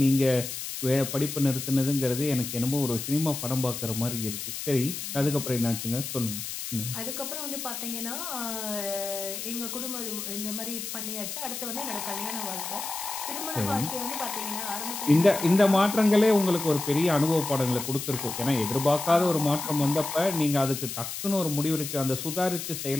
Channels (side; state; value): left; noise; hiss, 6 dB below the sound